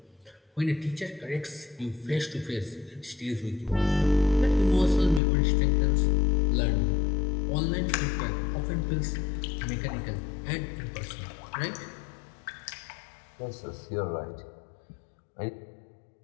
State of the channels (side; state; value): right; drops out; at 5.2 s